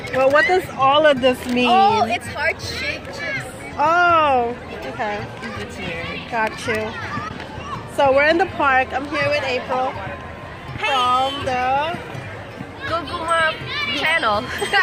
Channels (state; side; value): identical; both; correlation 1.00